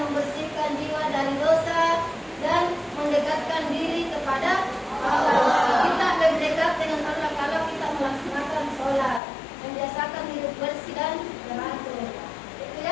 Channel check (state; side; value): drops out; right; at 9.2 s